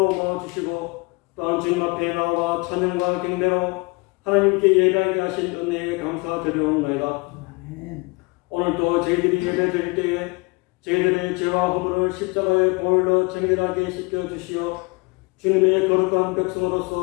모아주시고 또한 주님 앞에 나와 찬양과 경배로 하나님께 예배하게 하신 은혜에 감사드리옵나이다. 오늘도 저희들이 예배 드릴 때에 저희들의 죄와 허물을 십자가의 보혈로 정결하게 씻겨주시어 주님의 거룩한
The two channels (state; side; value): quieter; right; 27.5 dB